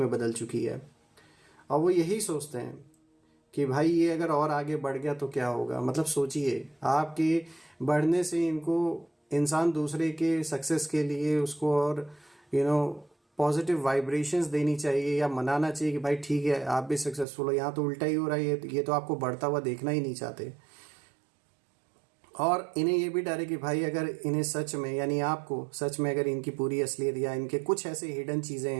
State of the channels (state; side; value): drops out; left; at 17.2 s